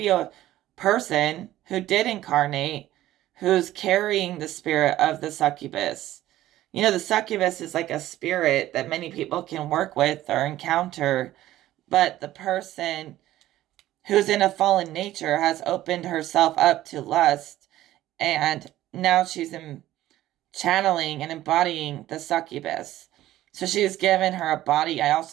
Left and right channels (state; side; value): quieter; left; 14.5 dB